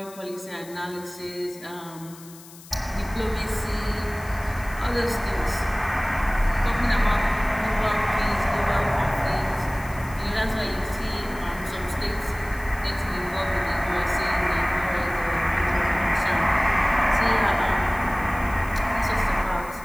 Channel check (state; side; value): noise; left; hiss, 20 dB below the sound